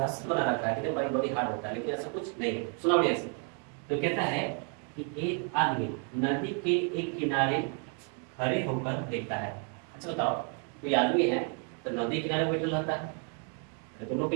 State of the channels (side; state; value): left; quieter; 39.9 dB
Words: बना रखा है कि भाई बड़ी हार्ड होता है, लेकिन ऐसा कुछ नहीं है। सुना बढ़िया से, तो कहता है कि एक आदमी नदी के एक किनारे खड़े होकर देखता है। अच्छा बताओ कोई आदमी है तो नदी किनारे बैठा रहता है, तुम लोग के